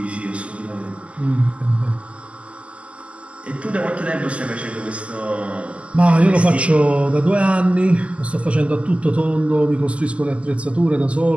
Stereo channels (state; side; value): late; left; 0.061 ms